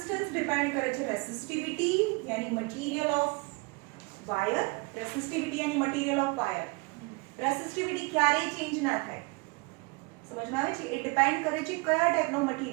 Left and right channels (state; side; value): quieter; left; 29.0 dB